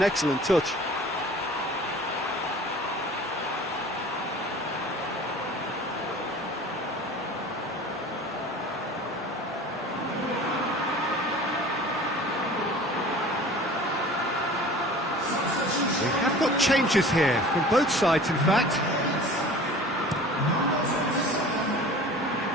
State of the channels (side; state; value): both; normal; correlation 0.42